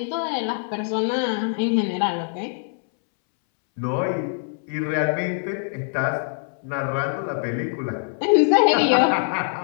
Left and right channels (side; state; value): right; silent; 63 dB below the other